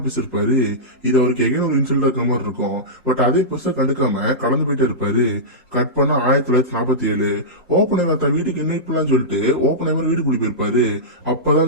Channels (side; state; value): both; normal; correlation -0.15